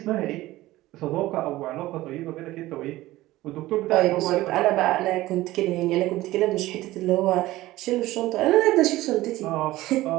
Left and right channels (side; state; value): left; quieter; 17.1 dB